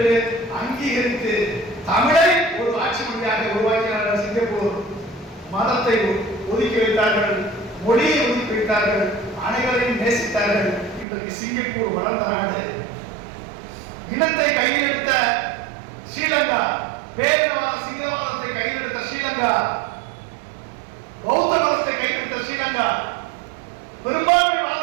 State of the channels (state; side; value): drops out; left; at 11.1 s